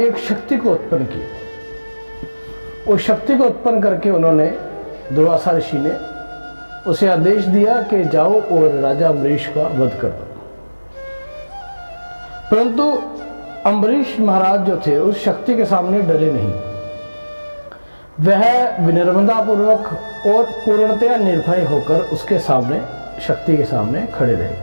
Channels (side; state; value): both; inverted; correlation -1.00